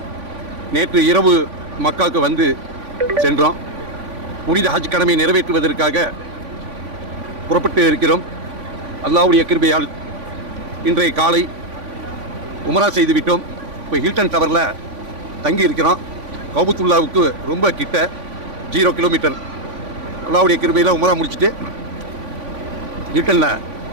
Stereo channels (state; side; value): late; left; 3.5 ms